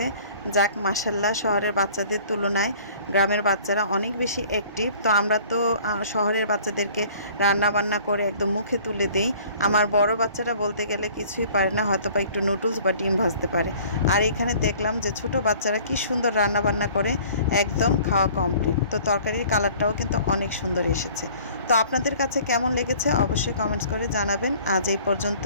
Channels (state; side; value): inverted; both; correlation -0.51